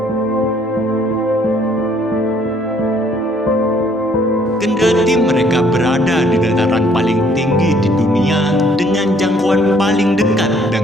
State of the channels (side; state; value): both; normal; correlation 0.63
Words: Kendati mereka berada di dataran paling tinggi di dunia dengan jangkauan paling dekat